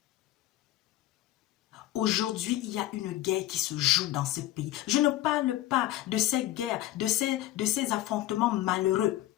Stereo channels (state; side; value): quieter; right; 14.8 dB